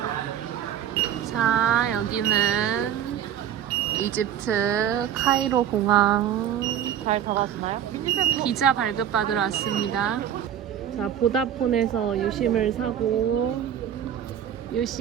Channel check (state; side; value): quieter; left; 10.0 dB